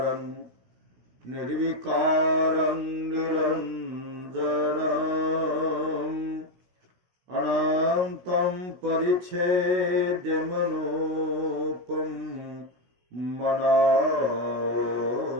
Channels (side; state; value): left; late; 16 ms